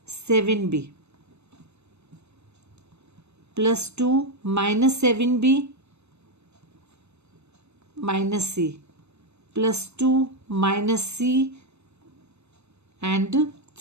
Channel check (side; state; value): left; late; 0.81 ms